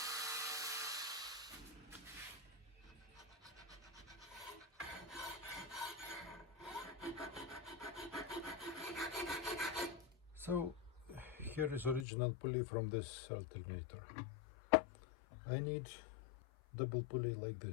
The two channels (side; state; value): right; drops out; at 12.1 s